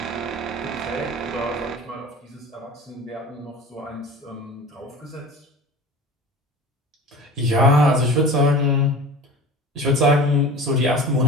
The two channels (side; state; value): both; normal; correlation 0.37